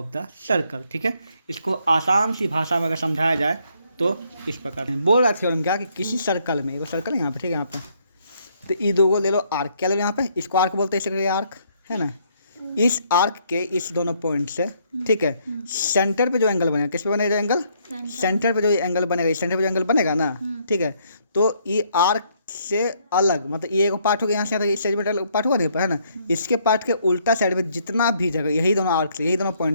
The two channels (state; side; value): inverted; both; correlation -0.69